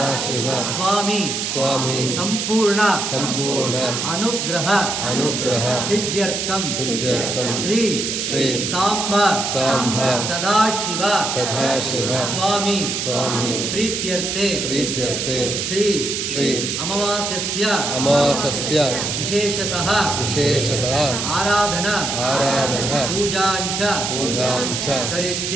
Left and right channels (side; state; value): right; noise; hiss, 2 dB below the sound